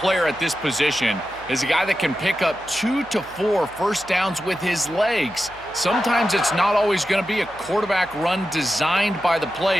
at this position is a guy that can pick up 2 to 4 first downs with his legs. Sometimes it's not always going to be a quarterback run designed by the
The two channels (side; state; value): right; noise; hum, 23 dB below the sound